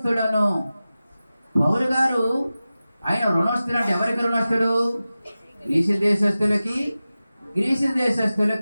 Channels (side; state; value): both; inverted; correlation -0.95